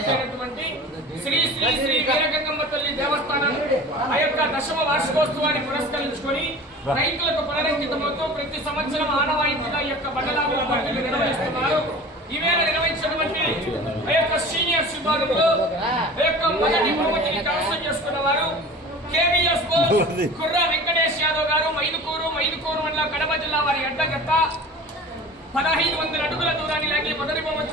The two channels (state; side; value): normal; both; correlation 0.39